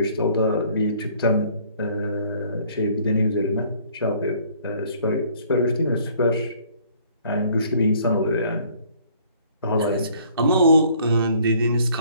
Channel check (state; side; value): inverted; both; correlation -0.59